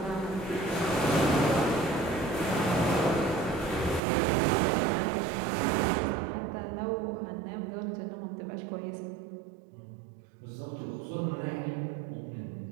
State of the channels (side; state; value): left; drops out; at 4.0 s